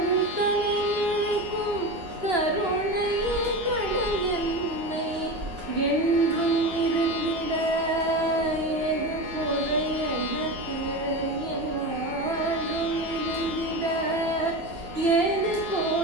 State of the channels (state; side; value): late; left; 2.9 ms